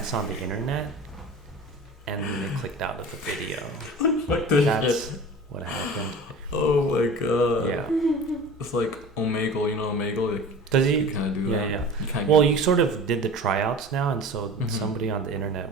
on the internet and they clicked out of the video. Fuck this That's shit. what happened. Oh my god. Yeah. It's like Omegle, you know Omegle? Like, does he? You kind of do that. Yeah. Well, you sort of did the tryouts now, and so somebody on the internet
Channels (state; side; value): normal; both; correlation 0.38